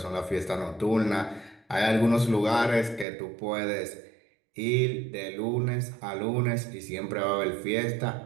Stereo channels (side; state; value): left; drops out; at 3.1 s